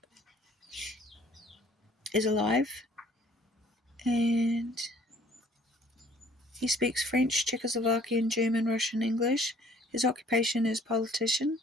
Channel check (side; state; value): both; normal; correlation 0.56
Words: is alive. And he speaks French, Czechoslovakian, German, Russian, English. His occupation is politician.